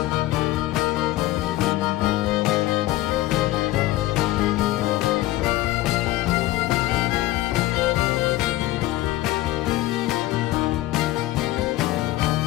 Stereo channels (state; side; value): quieter; right; 16.7 dB